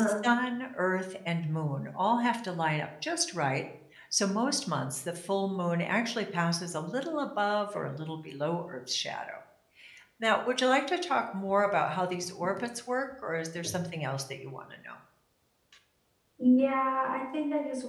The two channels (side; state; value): both; identical; correlation 1.00